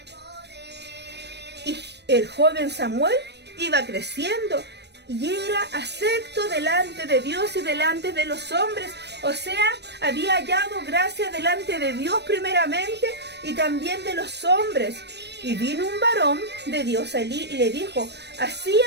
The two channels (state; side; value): late; left; 0.50 ms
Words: Y el joven Samuel iba creciendo y era acepto delante de Dios y delante de los hombres. O sea, había hallado gracia delante de Dios primeramente y también de los hombres. Y vino un varón de Dios a Elí y le dijo: así